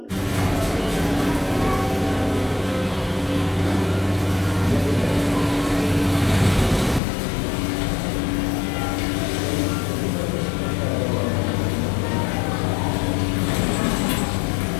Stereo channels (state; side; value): drops out; right; at 7.0 s